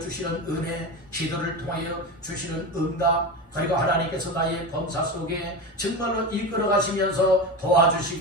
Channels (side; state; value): both; normal; correlation 0.22